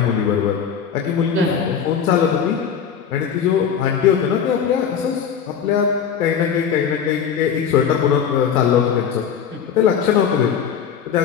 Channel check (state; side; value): quieter; right; 7.7 dB